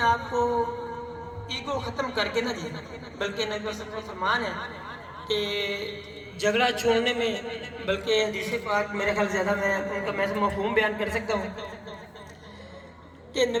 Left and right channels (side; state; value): both; identical; correlation 1.00